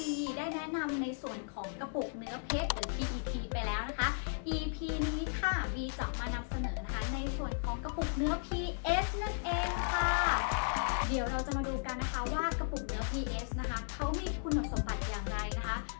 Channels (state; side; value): silent; right; digital silence